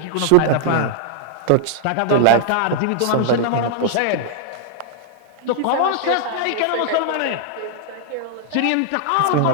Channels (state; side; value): different; both; correlation -0.01